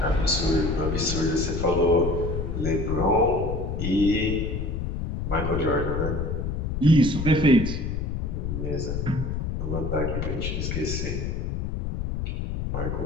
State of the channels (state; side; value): noise; left; rumble, 2 dB below the sound